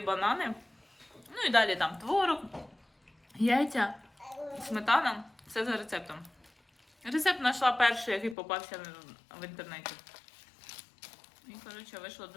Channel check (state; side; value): drops out; right; at 8.3 s